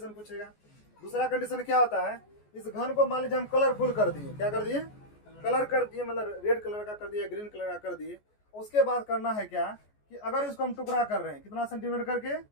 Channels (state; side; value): late; right; 14 ms